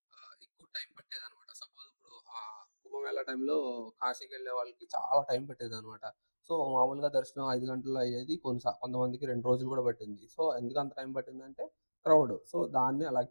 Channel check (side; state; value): both; inverted; correlation -1.00